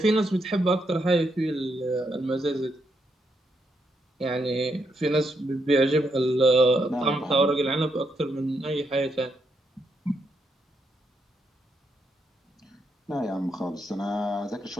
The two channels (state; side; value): normal; both; correlation 0.79